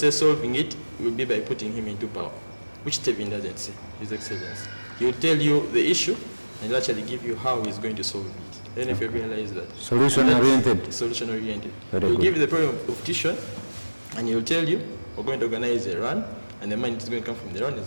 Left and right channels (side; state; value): both; inverted; correlation -1.00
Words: solving it will be by putting him into power, which Tevin doesn't say, His Excellency. He will tell you the issue, and he'll actually give you how he's going to solve it. Then if you realize that. Solution-oriented. Solution-oriented. Very He'll good. give you the problem of Dishon, and he'll tell you, we're going to organize a run, and the money is going to come from the run,